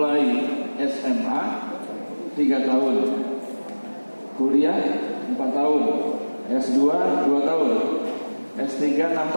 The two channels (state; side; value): inverted; both; correlation -1.00